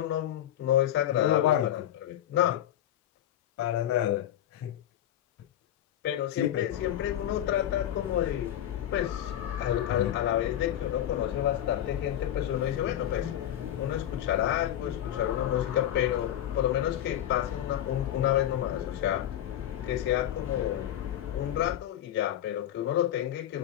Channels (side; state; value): right; quieter; 11.6 dB